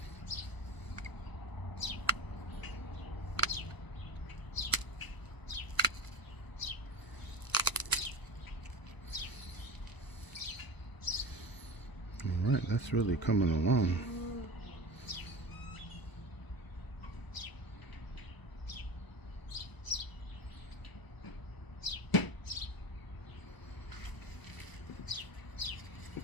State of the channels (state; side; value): late; right; 1.0 ms